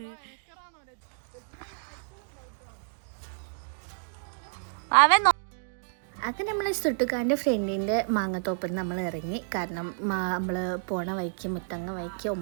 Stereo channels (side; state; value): left; silent; digital silence